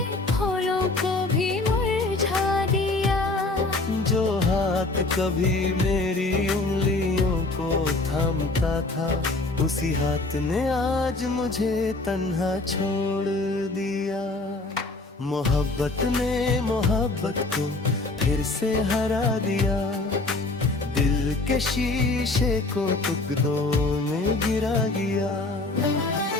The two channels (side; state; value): right; quieter; 3.1 dB